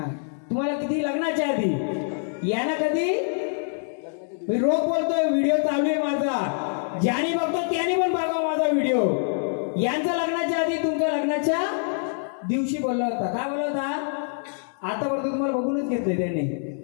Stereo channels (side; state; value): right; silent; digital silence